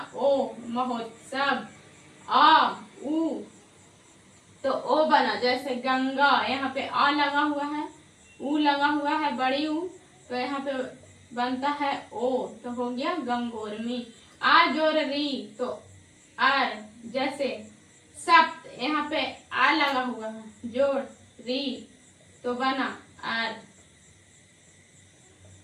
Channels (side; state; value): both; identical; correlation 1.00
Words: ओ महोत्सव। आ उ तो ओ बना। जैसे गंगा यहाँ पे आ लगा हुआ है, उ लगा हुआ है बड़ी उ तो यहाँ पे बनता है ओ, तो हो गया गंगोर्मी। आ जोड़ री तो आर, जैसे सप्त यहाँ पे आ लगा हुआ है, जोड़ री तो बना आर।